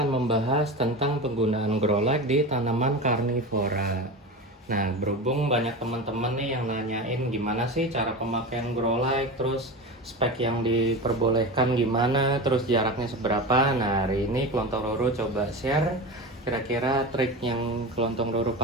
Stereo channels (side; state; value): both; normal; correlation 0.26